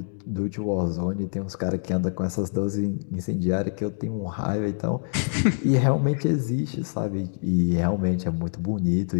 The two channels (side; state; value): right; silent; digital silence